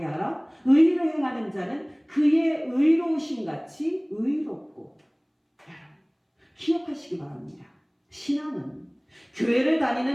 하라. 의의를 행하는 자는 그의 의로우심 같이 의롭고. 기억하시기 바랍니다. 신앙은 교회를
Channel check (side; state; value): both; identical; correlation 1.00